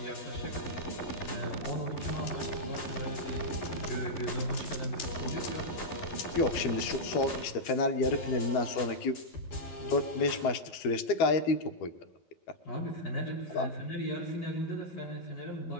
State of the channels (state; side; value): late; right; 12 ms